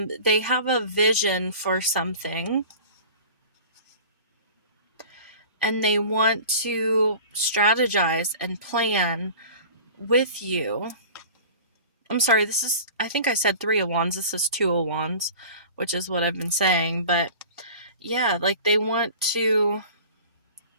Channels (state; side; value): inverted; both; correlation -0.41